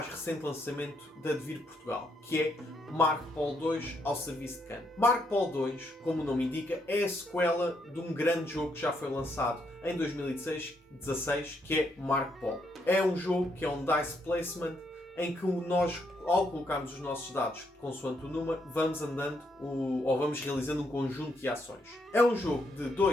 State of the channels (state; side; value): normal; both; correlation 0.76